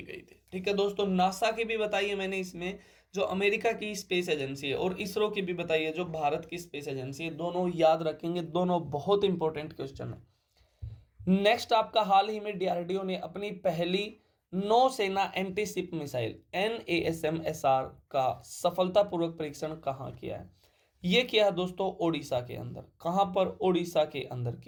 गई थी, ठीक है दोस्तों। नासा की भी बताई है मैंने इसमें, जो अमेरिका की स्पेस एजेंसी है, और इसरो की भी बताई है जो भारत की स्पेस एजेंसी है, दोनों याद रखेंगे, दोनों बहुत इंपॉर्टेंट क्वेश्चन है। नेक्स्ट आपका हाल ही में डीआरडीओ ने अपनी पहली नौसेना एंटीशिप मिसाइल NASMSR का सफलतापूर्वक परीक्षण कहाँ किया है? ये किया है दोस्तों ओडिशा के अंदर। कहां पर? ओडिशा के अंदर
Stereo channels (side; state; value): both; identical; correlation 1.00